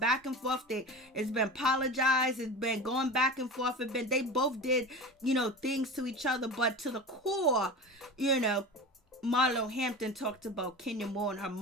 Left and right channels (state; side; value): normal; both; correlation 0.31